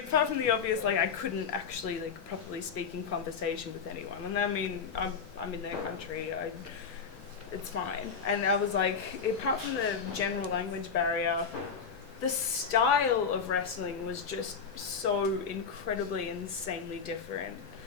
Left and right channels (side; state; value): right; quieter; 5.9 dB